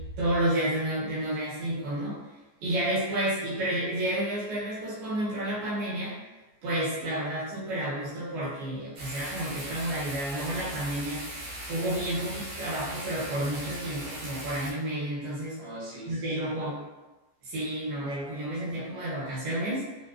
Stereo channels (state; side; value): late; left; 14 ms